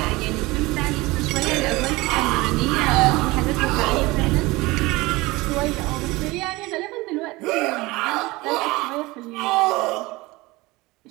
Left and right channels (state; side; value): quieter; left; 21.8 dB